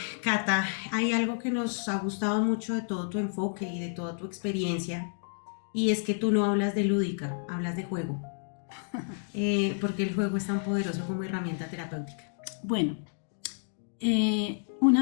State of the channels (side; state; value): right; silent; digital silence